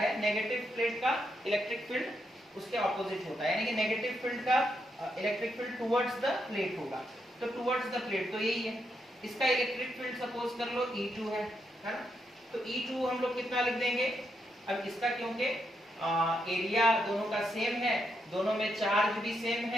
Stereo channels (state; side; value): normal; both; correlation 0.80